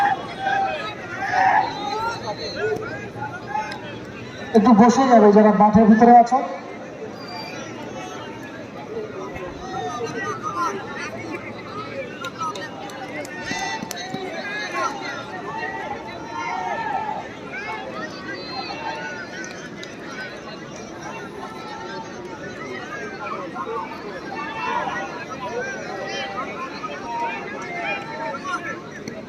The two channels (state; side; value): identical; both; correlation 1.00